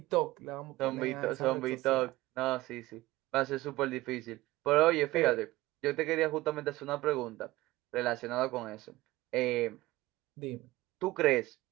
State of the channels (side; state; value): left; quieter; 18.6 dB